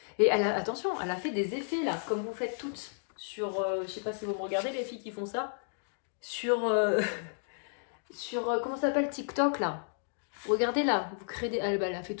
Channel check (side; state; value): right; silent; digital silence